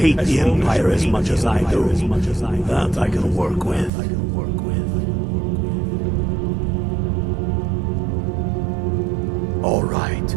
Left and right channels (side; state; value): left; drops out; at 3.9 s